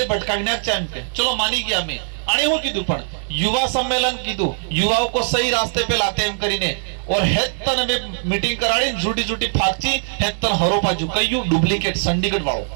भटकाने के चलो मानी गया मैं आने हो कीधु पण युवा सम्मेलन कीधु, युवाओं को सही रास्ते पे लाते एम करीने और हेतन में मीटिंग कराड़ी झूठी झूठी फाकची हेतन हरोपा झुकायु डुप्लीकेट संडीगढ़ वालों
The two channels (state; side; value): silent; left; digital silence